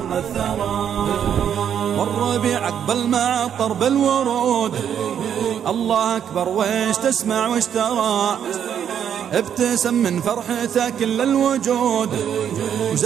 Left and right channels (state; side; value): quieter; left; 8.9 dB